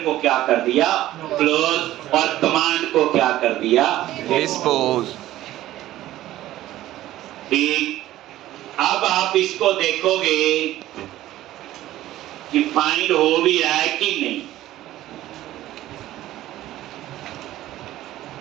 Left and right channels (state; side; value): quieter; left; 14.7 dB